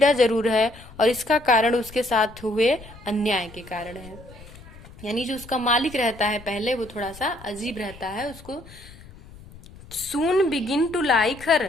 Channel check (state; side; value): noise; left; rumble, 19 dB below the sound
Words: जरूर है और इसका कारण उसके साथ हुए अन्याय के कारण है। यानी जो उसका मालिक रहता है पहले, वो थोड़ा सा अजीब रहता है, उसको soon begin to like